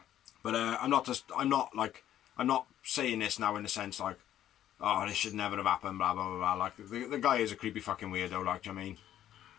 But I'm not saying this now in the sense like, oh, this should never have happened, blah blah blah blah. Like the guy is a creepy fucking weirdo. Like, do you know what I mean?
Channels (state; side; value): quieter; right; 11.7 dB